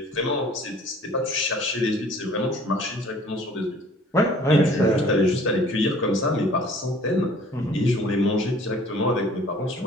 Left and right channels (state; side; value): normal; both; correlation 0.52